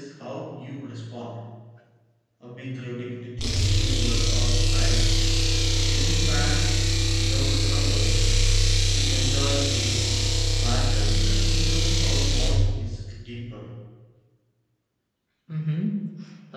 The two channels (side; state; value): both; identical; correlation 1.00